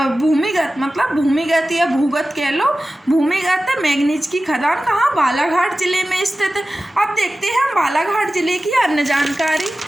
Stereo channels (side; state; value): both; normal; correlation 0.95